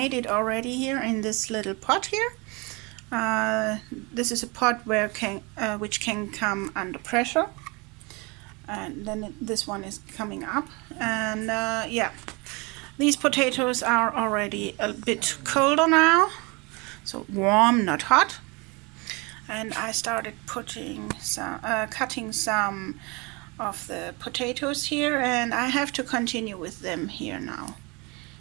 it already here in this little pot here. This is a pot which can come under pressure, and then this one is coming up, and yeah, these potatoes are already a bit colder now, so warm, not hot. And I started cutting some of the potatoes here, and I have to continue with them here now.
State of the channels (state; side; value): quieter; left; 28.0 dB